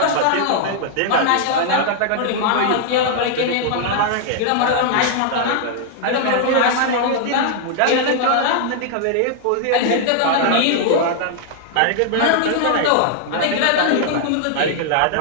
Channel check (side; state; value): both; different; correlation 0.00